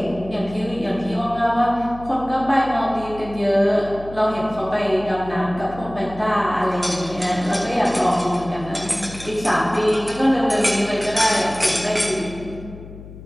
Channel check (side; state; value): left; noise; hum, 15 dB below the sound